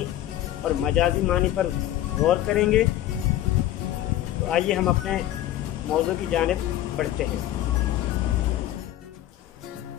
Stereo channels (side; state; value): right; quieter; 13.2 dB